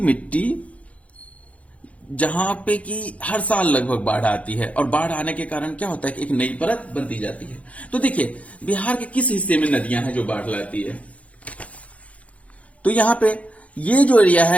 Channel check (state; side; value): late; right; 0.066 ms